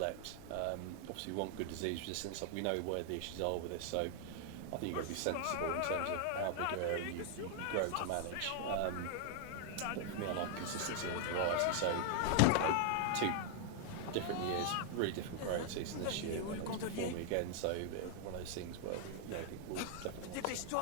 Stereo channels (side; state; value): both; different; correlation 0.00